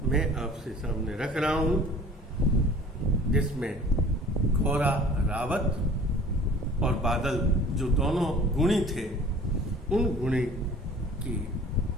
मैं आपसे सामने रख रहा हूं, जिसमें घोड़ा रावत और बादल जो दोनों गुणी थे, उन गुणी की,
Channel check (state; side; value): normal; both; correlation 0.48